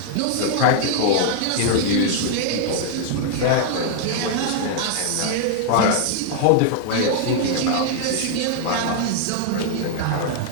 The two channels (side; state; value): both; different; correlation -0.01